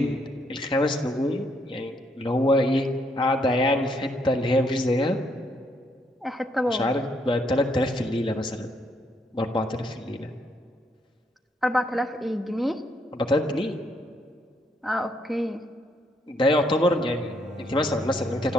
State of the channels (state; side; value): normal; both; correlation 0.72